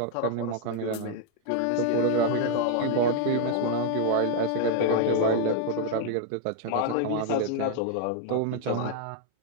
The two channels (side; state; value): both; different; correlation 0.00